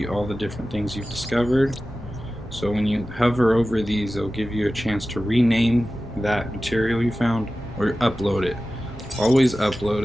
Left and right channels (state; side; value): normal; both; correlation 0.95